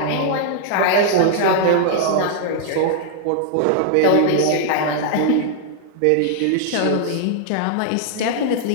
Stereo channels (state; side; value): different; both; correlation -0.01